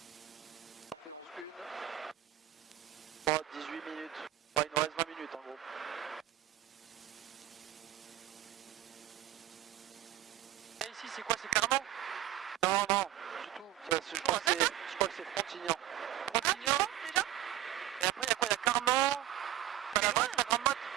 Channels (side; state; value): left; quieter; 13.5 dB